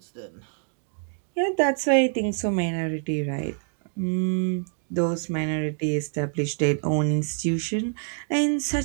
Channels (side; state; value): left; silent; 59 dB below the other